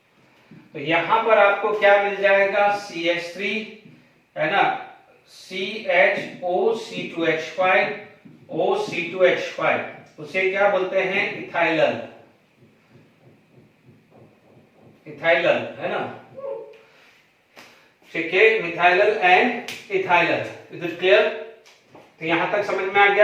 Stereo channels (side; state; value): both; identical; correlation 1.00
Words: तो यहां पर आपको क्या मिल जाएगा, CH3 है ना, CHO C2H5 O C2H5, उसे क्या बोलते हैं, इथाइलल, इथाइलल है ना। ठीक है, मिथाइलल एंड इथाइलल, इज इट क्लियर? तो यहां तक समझ में आ